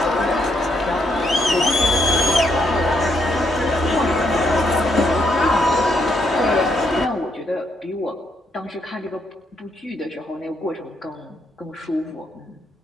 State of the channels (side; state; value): both; normal; correlation 0.75